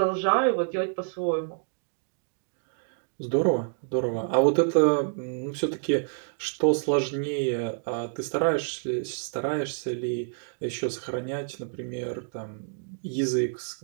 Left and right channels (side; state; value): left; silent; digital silence